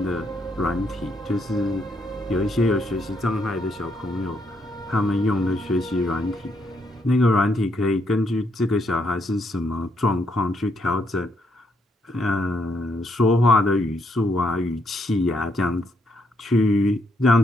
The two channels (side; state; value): both; normal; correlation 0.75